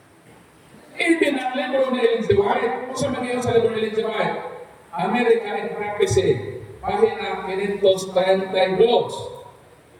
Even ang libro ni Ellen G. White, kung sa mga sa libro ni Ellen G. White, America in Prophecy, pahina 532.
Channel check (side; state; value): both; identical; correlation 1.00